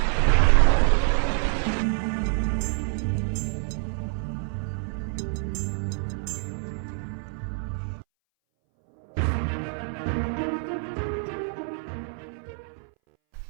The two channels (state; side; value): silent; left; 60 dB below the other